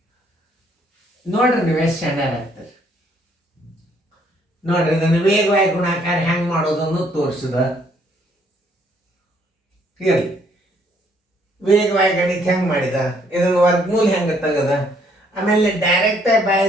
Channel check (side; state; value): both; normal; correlation 0.66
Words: ನೋಡ್ರಿ ನೀವು ಎಷ್ಟು ಶಾಣ್ಯರಾಗ್ತೀರಿ. ನೋಡ್ರಿ ಇದನ್ನು ವೇಗವಾಗಿ ಗುಣಾಕಾರ ಹೆಂಗೆ ಮಾಡೋದನ್ನು ತೋರಿಸಿದ. ಇರಲಿ, ವೇಗವಾಗಿ ಗಣಿತ ಹೆಂಗೆ ಮಾಡಿದ, ಇದನ್ನು ವರ್ಗಮೂಲ ಹೆಂಗೆ ತೆಗದ, ಆಮೇಲೆ ಡೈರೆಕ್ಟಾಗಿ